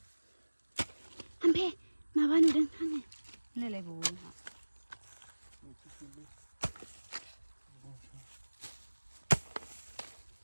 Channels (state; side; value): inverted; both; correlation -1.00